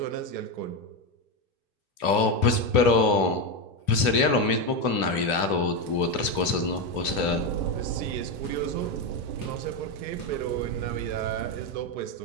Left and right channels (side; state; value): right; late; 2.9 ms